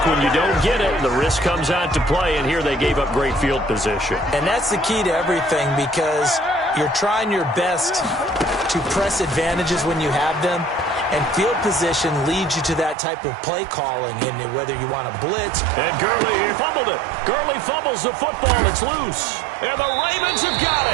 When you don't get it, the risk comes out to play, and here they gave up great field position. And that's the key to everything, because you're trying your best to press advantages when you have them, and field position leads you to that type of play calling, and whether you want to blitz. And Gurley fumbled it. Gurley fumbles the football. It's loose. And the Ravens have got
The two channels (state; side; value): drops out; left; at 13.0 s